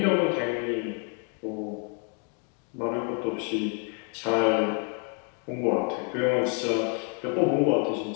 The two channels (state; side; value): quieter; right; 39.2 dB